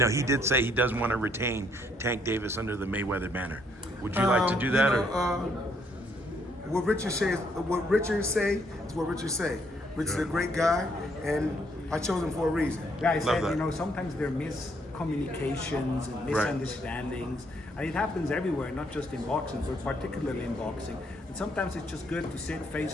he did say he doesn't want to retain Tank Davis under the Mayweather banner. Would you like to do that? What Richard say is what Richard say. Richard's a great guy, and I chose him for a reason. Guys said, you know, sometimes there are miscommunications and misunderstandings, and it happens everywhere, not just in boxing, but particularly in boxing. And sometimes it's just good to sit face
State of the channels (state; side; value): normal; both; correlation 0.70